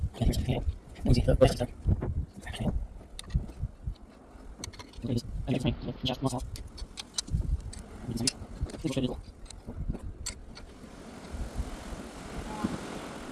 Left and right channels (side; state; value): both; identical; correlation 1.00